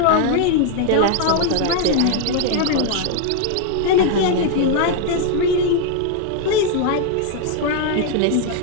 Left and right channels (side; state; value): both; different; correlation 0.00